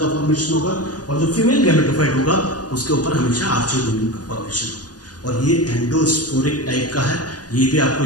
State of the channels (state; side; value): late; right; 0.69 ms